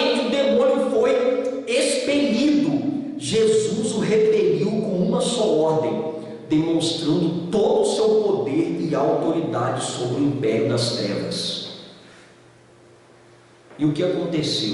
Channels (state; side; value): identical; both; correlation 1.00